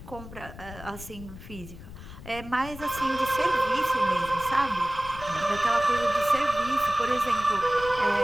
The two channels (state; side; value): noise; left; rumble, 15 dB below the sound